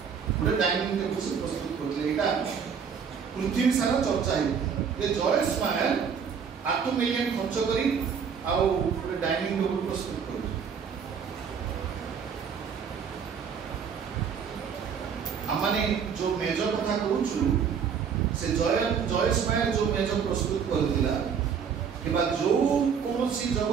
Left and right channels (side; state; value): left; quieter; 6.9 dB